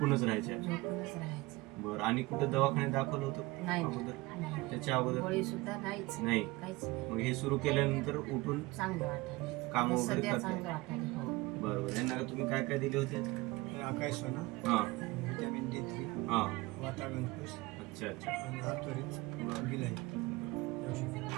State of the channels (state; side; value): quieter; left; 21.9 dB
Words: राहायच्या. झोपूनच राहायचं. बरं, आणि कुठे दवाखान्यात दाखवलं होतं नाही अगोदर? त्याच्या अगोदर गोळी सुद्धा नाहीच, नाही. काहीच नाही. मग हे सुरू केल्यानंतर उठून चांगलं वाटायला, काम वगैरे सध्या करता? चांगलं वाटायला. हो. बरोबर. यांना तुम्ही काय काय दिले होते? आकाश सोना, हा विटॅमिन D3, हा. वातावरण पुष अच्छा अच्छा. आणि हातोरीत गिलाई.